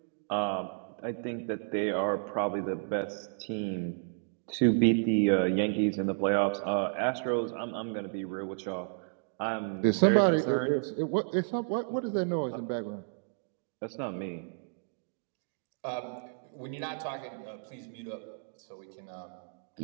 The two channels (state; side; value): silent; left; digital silence